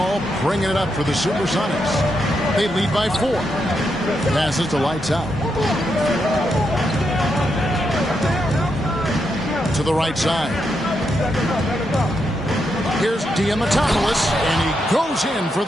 bringing it up for the Supersonics. They lead by 4. Passes to Lights Out. To the right side. Here's Diamatopoulos, and he goes in for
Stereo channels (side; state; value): both; normal; correlation 0.82